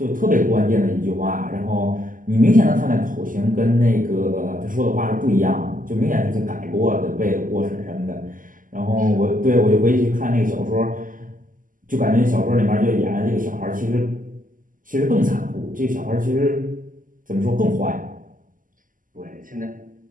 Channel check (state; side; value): late; left; 0.39 ms